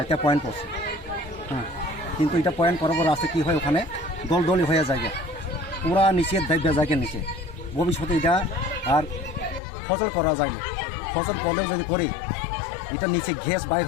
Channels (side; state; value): right; drops out; at 9.6 s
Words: পয়েন্ট পড়ছে হ্যাঁ কিন্তু এটা পয়েন্ট করার পর আছে কি হয় ওখানে দলদলি হয়ে যায় পুরা নিচে দাইবা যায় নিচে ভবিষ্যতে এটা আর ফসল করা যায় না ফসল করলেও যদি করি এটা নিচে গ্যাস বাইর